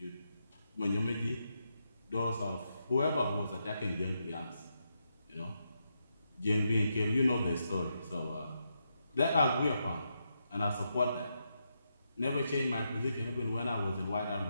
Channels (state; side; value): inverted; both; correlation -0.83